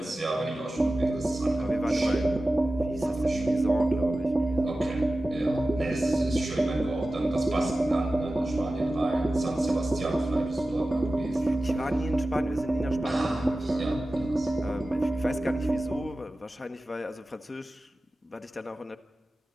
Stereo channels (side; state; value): both; normal; correlation 0.95